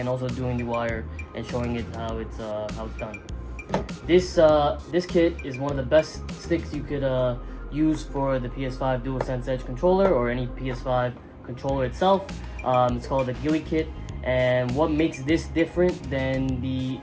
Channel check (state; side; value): identical; both; correlation 1.00